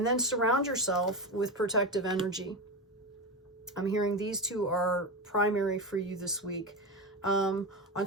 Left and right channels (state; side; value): normal; both; correlation 0.18